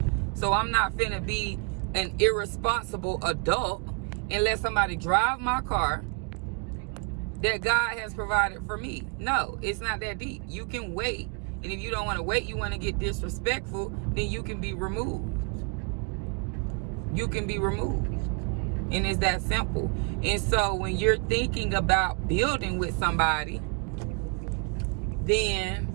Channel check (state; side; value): quieter; left; 35.8 dB